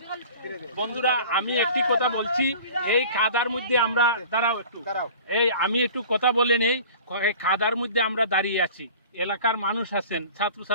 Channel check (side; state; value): both; inverted; correlation -0.43